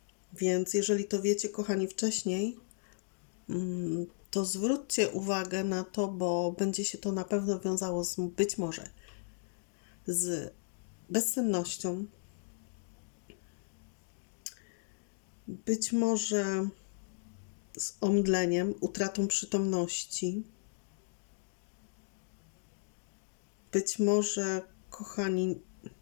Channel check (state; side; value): silent; right; digital silence